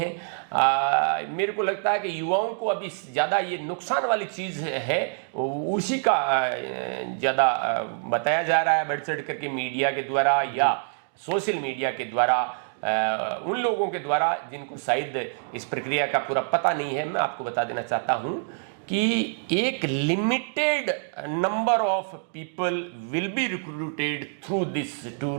मेरे को लगता है कि युवाओं को अभी ज्यादा ये नुकसान वाली चीज है उसी का ज्यादा बताया जा रहा है, बढ़ चढ़ करके मीडिया के द्वारा या सोशल मीडिया के द्वारा, उन लोगों के द्वारा जिनको शायद इस प्रक्रिया का पूरा पता नहीं है। मैं आपको बता देना चाहता हूं कि एक limited number of people will be recruited through this tour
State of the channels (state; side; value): silent; left; digital silence